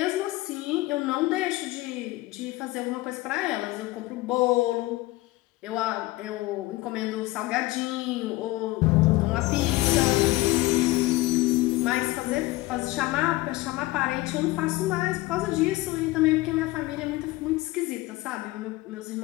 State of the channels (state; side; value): quieter; right; 19.3 dB